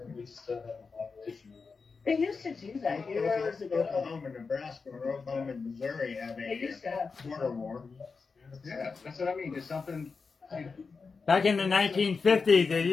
We just don't have a population. They used to do that years ago. Oklahoma, Nebraska, or Oklahoma and Missouri have They used to have. a border war. Yeah, that's what I mean. It's something. Back in the 1950s, they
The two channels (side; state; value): right; quieter; 4.8 dB